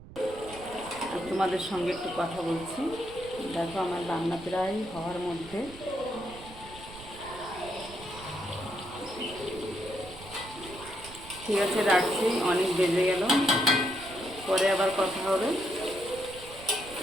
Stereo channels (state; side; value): noise; right; rumble, 17 dB below the sound